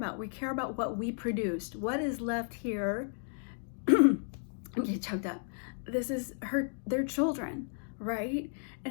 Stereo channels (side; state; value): right; silent; 55 dB below the other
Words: We care about what we produced. What is left here? I'm getting choked up. This is their children, right?